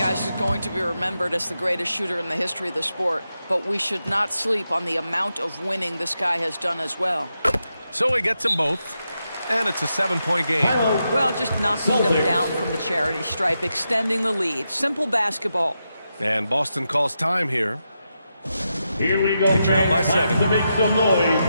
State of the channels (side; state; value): both; inverted; correlation -0.86